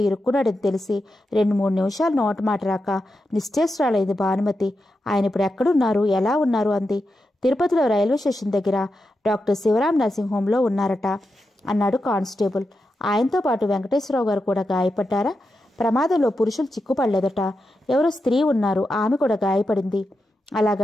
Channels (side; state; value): both; normal; correlation 0.88